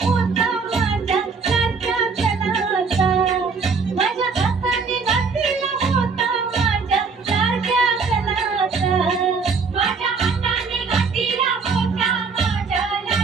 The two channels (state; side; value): quieter; left; 4.9 dB